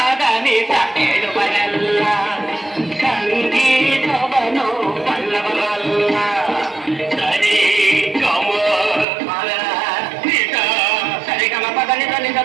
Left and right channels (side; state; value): left; drops out; at 9.1 s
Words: ನಿಜ ಹೇಳುವರಲ್ಲ, ಸಂಗೀತವನು ಬಲ್ಲವರಲ್ಲ. ಸರಿ ಗಮ ಪದ ನಿಜ, ಸರಿಗಮ ಪದ ನಿಜ